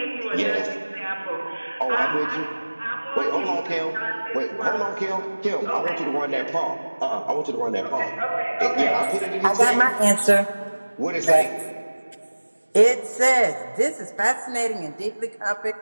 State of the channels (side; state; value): both; inverted; correlation -1.00